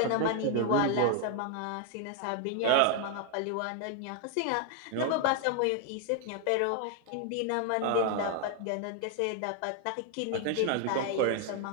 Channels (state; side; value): different; both; correlation 0.01